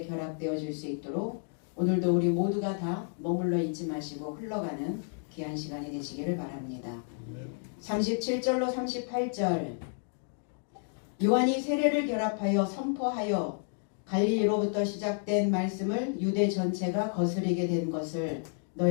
결합되어질 수 있도록 오늘도 우리 모두가 다 머물러 있지 마시고 흘러가는 귀한 시간이 되시기를 바랍니다. 37절로 38절 요한이 세례를 결합하여 선포하여 갈릴리로부터 시작된 말씀을 유대 전체가 거스르게 된 것을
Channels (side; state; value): right; silent; 56 dB below the other